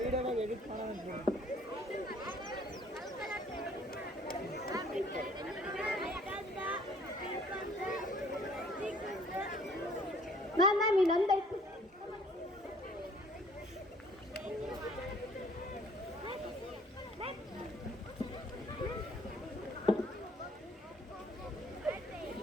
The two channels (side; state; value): both; normal; correlation 0.57